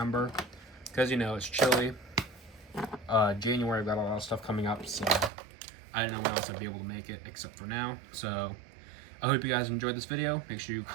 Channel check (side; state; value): left; drops out; at 5.3 s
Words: Because, you know, it's chilly. January, I've got a lot of stuff coming up, so I didn't know when else I'd be able to make it except for now. So I hope you guys enjoyed this video. Make sure you